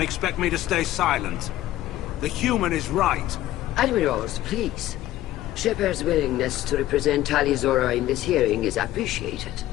expect me to stay silent. The human is right. Admirals, please. Shepard's willingness to represent Tali Zora in this hearing is appreciated.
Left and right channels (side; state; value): right; quieter; 14.6 dB